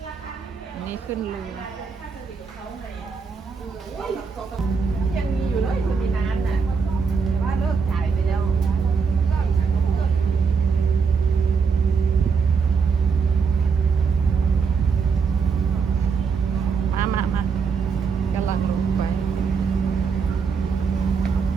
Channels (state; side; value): quieter; left; 5.5 dB